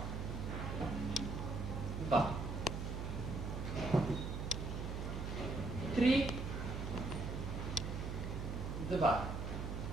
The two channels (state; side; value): noise; right; hum, 4 dB below the sound